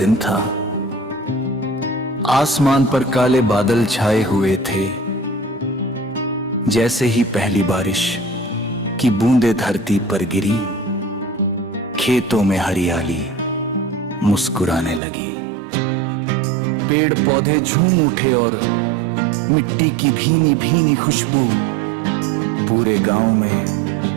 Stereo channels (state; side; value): drops out; left; at 15.0 s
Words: था। आसमान पर काले बादल छाए हुए थे। जैसे ही पहली बारिश की बूंदें धरती पर गिरी, खेतों में हरियाली मुस्कुराने लगी। पेड़ पौधे झूम उठे और मिट्टी की भीनी भीनी खुशबू पूरे गांव में